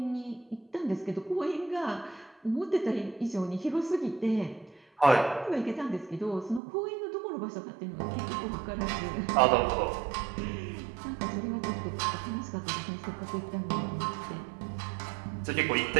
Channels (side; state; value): left; drops out; at 6.6 s